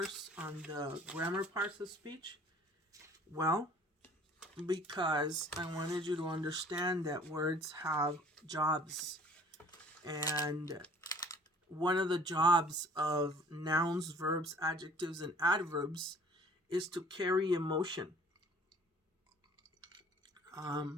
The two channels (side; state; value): both; normal; correlation 0.52